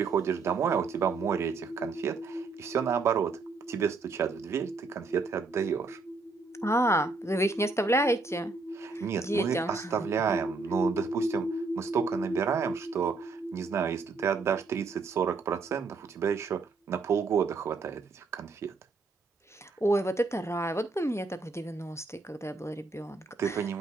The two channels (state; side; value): quieter; left; 4.0 dB